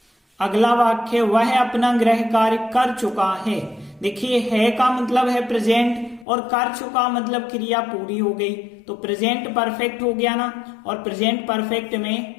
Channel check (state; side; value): drops out; right; at 6.2 s